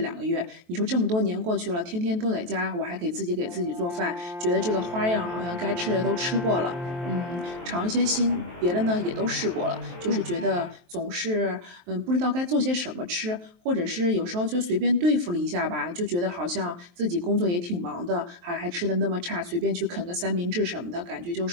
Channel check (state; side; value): late; left; 23 ms